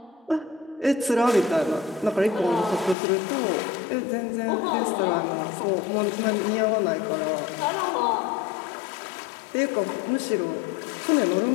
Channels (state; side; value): drops out; right; at 3.0 s